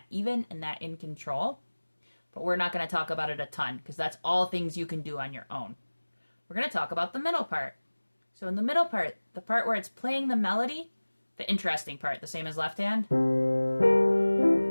even and that in control. But we're not going to talk about it a ton because that's all things you can do on your own. We're going to talk about the middle part. So in the middle part, the part where it's playing the melody, the interesting part, the same as left hand.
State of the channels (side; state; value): both; inverted; correlation -1.00